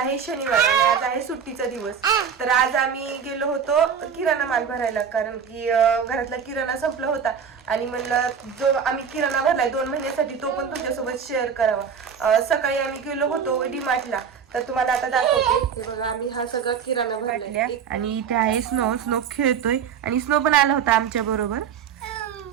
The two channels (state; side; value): quieter; left; 7.2 dB